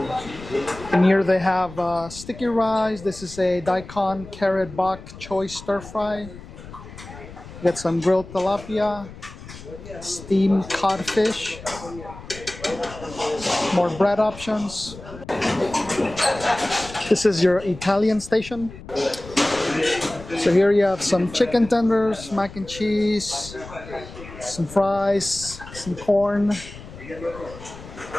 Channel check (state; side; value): noise; left; rumble, 15 dB below the sound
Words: And here they have sticky rice. This is a daikon carrot bok choy stir fry. Get some grilled tilapia, steamed codfish, more bread options. This is your Italian station. So here you have some chicken tenders, mac and cheese, some fries, some corn.